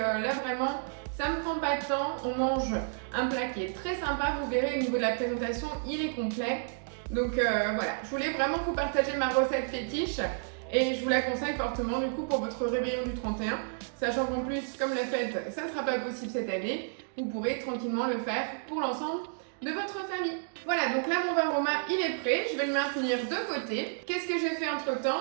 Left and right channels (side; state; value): left; silent; digital silence